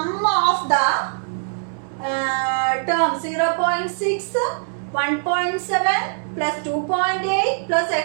of the terms 0.6, 1.7 plus 2.8 plus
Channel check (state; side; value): silent; left; digital silence